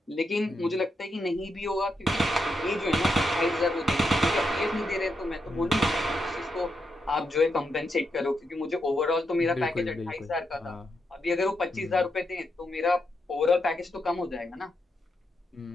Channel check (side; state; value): both; normal; correlation 0.83